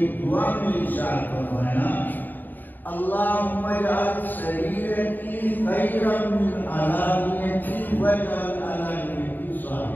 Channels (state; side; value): late; right; 0.089 ms